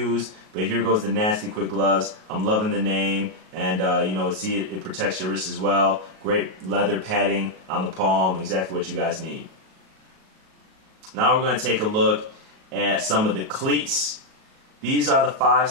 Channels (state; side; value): late; left; 37 ms